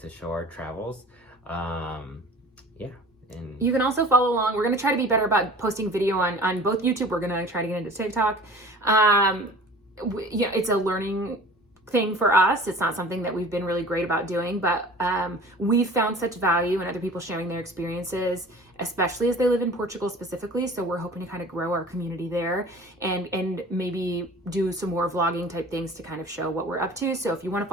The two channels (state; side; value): normal; both; correlation 0.44